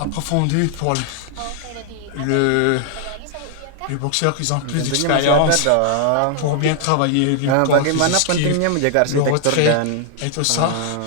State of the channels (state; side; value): different; both; correlation 0.00